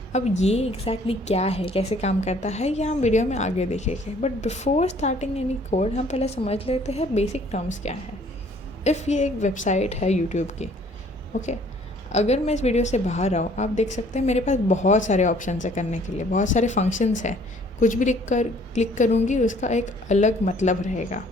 अब ये एग्जैक्टली क्या है, कैसे काम करता है, ये हम वीडियो में आगे देखेंगे। But before starting any code हम पहले समझ लेते हैं बेसिक टर्म्स क्या है। इफ़ ये एक वेबसाइट है यूट्यूब की, ओके, अगर मैं इस वीडियो से बाहर आऊँ, आप देख सकते हैं मेरे पास बहुत सारे ऑप्शन है करने के लिए, बहुत सारे फंक्शंस हैं। कुछ भी क्लिक करूँगी उसका एक अलग मतलब रहेगा।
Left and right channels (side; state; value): both; normal; correlation 0.58